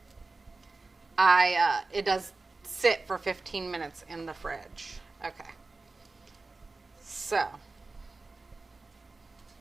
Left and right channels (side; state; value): left; quieter; 3.5 dB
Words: it does sit for 15 minutes in the fridge. Okay. So